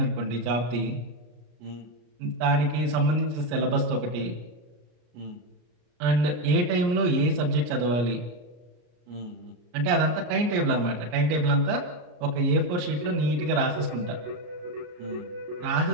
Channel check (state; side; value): late; left; 33 ms